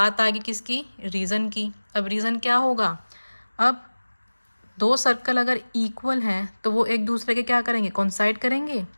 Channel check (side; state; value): both; inverted; correlation -1.00